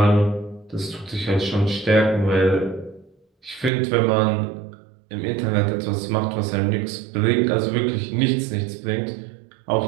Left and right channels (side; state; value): left; drops out; at 3.7 s